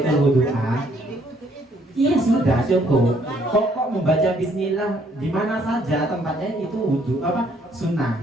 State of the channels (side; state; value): both; normal; correlation 0.66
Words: wudhu'a. Iya sudah cukup. Kok membaca Bismillah di mana saja tempatnya itu wudhu apa sunnah.